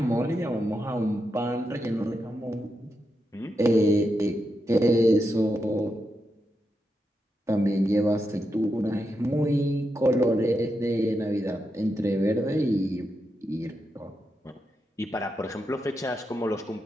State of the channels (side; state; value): both; normal; correlation 0.86